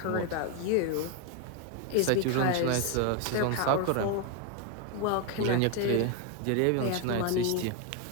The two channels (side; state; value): both; different; correlation 0.01